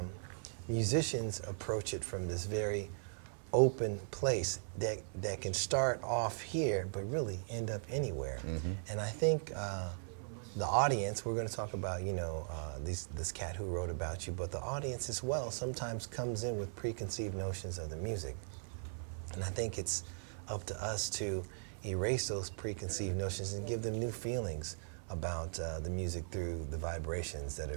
musicians approach it from this very open place that can start off here, but really end up anywhere. And I think the audience, we're going to talk about, you know, this cat who wrote about you, but the audience as well sometimes comes in with preconceived notions of the music. And I think it's up to us to erase those preconceived notions and give them new feelings about the music through the vibrations that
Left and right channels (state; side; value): silent; left; 52 dB below the other